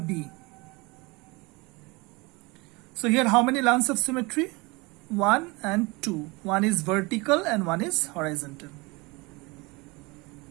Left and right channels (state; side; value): quieter; left; 25.4 dB